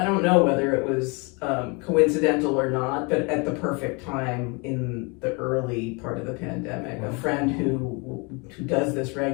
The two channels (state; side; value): quieter; right; 30.7 dB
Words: don't know whether it was coincidental or not, but at the perfect time in the early part of the pandemic, a friend who does this